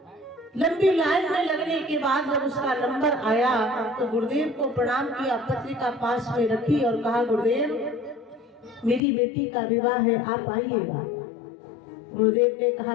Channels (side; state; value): right; drops out; at 9.0 s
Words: लंबी लाइन में लगने के बाद जब उसका नंबर आया तो गुरुदेव को प्रणाम किया, पत्रिका पास में रखी और कहा, गुरुदेव मेरी बेटी का विवाह है, आप आइएगा। गुरुदेव ने कहा,